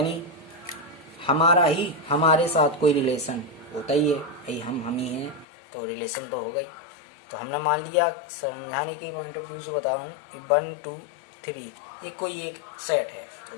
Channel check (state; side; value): drops out; right; at 5.5 s